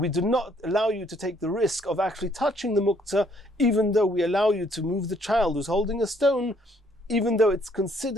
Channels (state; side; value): normal; both; correlation 0.66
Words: not allow you to take the risk of actually touching the muktzah, even though we allow you to move the child who's holding a stone, even though it's